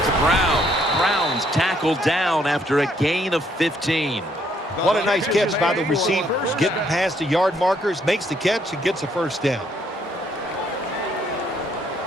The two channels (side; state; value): both; normal; correlation 0.69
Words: to Brown. Brown's tackled down after a gain of 15. What a nice catch by the receivers. Getting past the yard markers, makes the catch, and gets a first down.